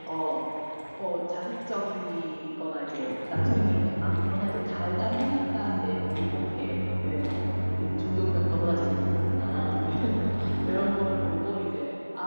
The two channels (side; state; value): both; inverted; correlation -1.00